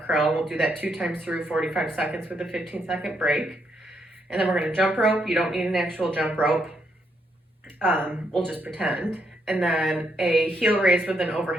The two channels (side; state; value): both; normal; correlation 0.77